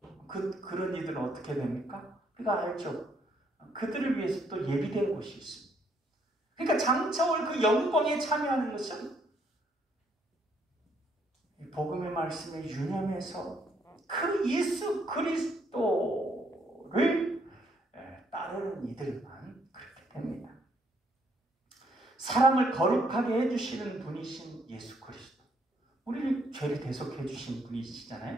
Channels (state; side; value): normal; both; correlation 0.70